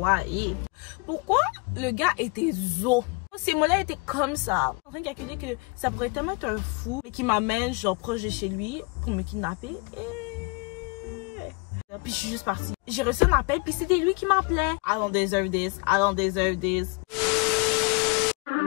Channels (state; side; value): quieter; right; 29.8 dB